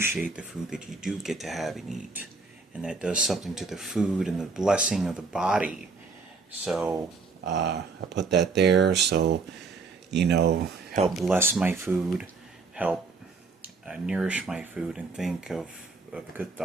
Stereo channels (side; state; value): left; quieter; 4.3 dB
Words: the food that you do get to have and eat. And that does something to the food and the blessing of the body. So I put that there. So, help bless my food, help nourish my food, and think of good